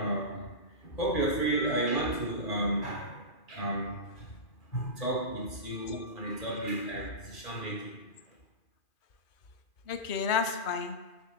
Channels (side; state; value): right; late; 2.4 ms